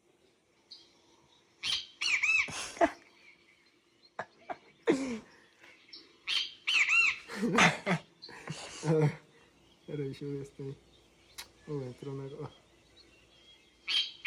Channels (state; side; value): identical; both; correlation 1.00